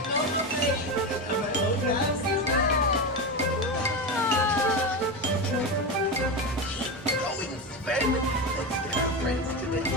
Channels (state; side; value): normal; both; correlation 0.17